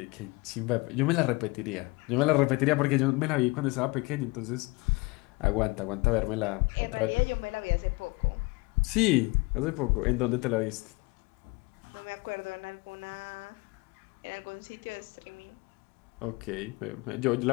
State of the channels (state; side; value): quieter; right; 25.1 dB